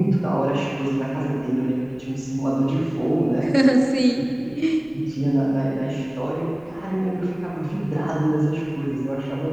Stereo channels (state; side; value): noise; left; rumble, 26 dB below the sound